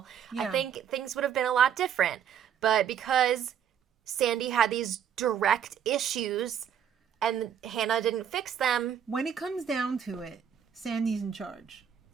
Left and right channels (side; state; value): left; quieter; 8.7 dB